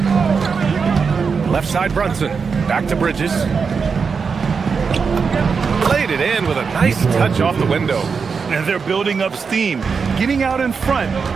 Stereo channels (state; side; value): quieter; left; 5.5 dB